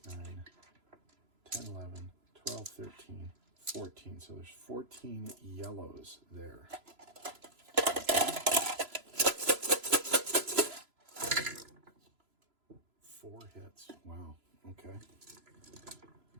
9, 10, 11, 12, 13, 14. So there's 14 yellows there. 4 hits. Wow. Okay.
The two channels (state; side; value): late; left; 3.0 ms